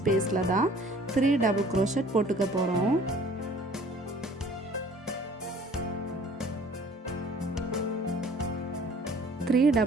தான் 3 டபுள் க்ரோஷெட் போட்டுக்க போகிறோம். த்ரீ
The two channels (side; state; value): both; normal; correlation 0.52